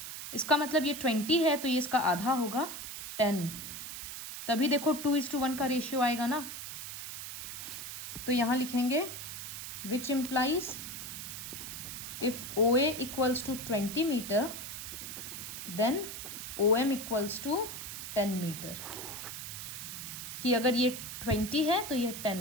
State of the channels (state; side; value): noise; right; hiss, 8 dB below the sound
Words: इसका मतलब ये 20 है तो ये इसका आधा होगा 10, तभी देखो 2:1 का रेशियो आएगा ना। तो यहाँ लिखेंगे which implies if OA equals to 20 meter then OM equals to 10 meter, कि अगर ये 20 है तो ये